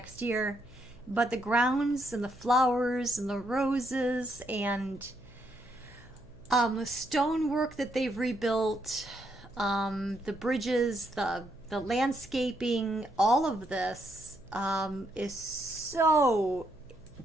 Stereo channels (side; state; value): left; noise; hum, 24 dB below the sound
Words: year. But the grounds and the flowers and the roses and the stonework that they've rebuilt, the bridges, the landscaping, all of this is so